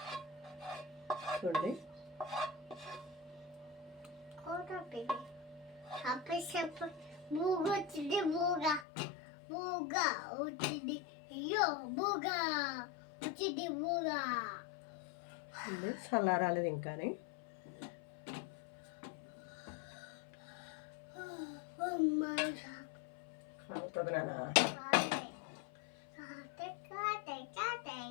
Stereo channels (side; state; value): right; drops out; at 8.8 s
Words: చూడండి. చల్లారాలేదు ఇంకానే. అవుతుంది నాన్న.